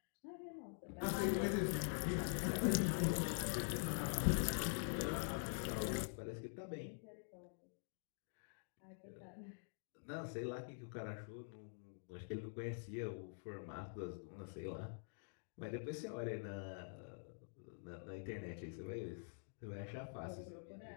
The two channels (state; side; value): silent; right; digital silence